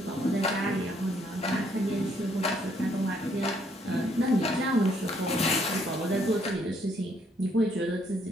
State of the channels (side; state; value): both; normal; correlation 0.69